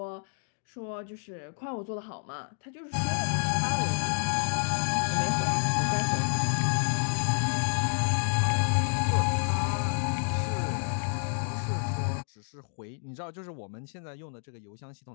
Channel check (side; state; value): right; silent; 58 dB below the other